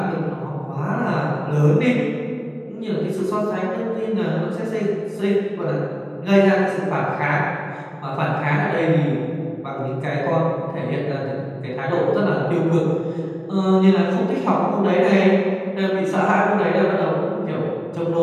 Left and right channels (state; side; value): identical; both; correlation 1.00